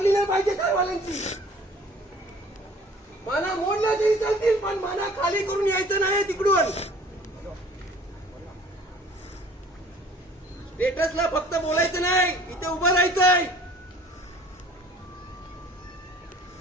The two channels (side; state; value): both; normal; correlation 0.51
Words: नाही पाहिजे कारवाल्यांची. माना मोडल्या तरी चालतील, पण माना खाली करून यायचं नाही तिकडून. स्टेटसला फक्त बोलायचं नाही, इथे उभं राहायचंय.